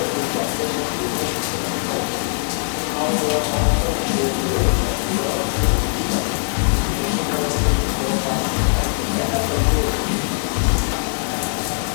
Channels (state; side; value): silent; right; digital silence